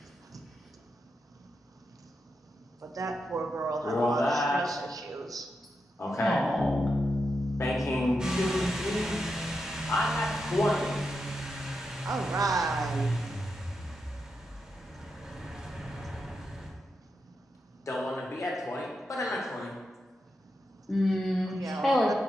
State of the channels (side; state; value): both; normal; correlation 0.86